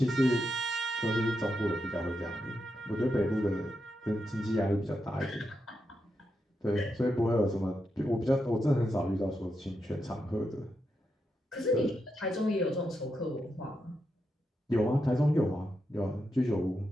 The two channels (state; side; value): normal; both; correlation 0.85